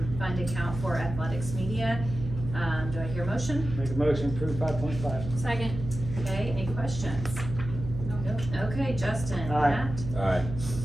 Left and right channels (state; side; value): noise; right; hum, 8 dB below the sound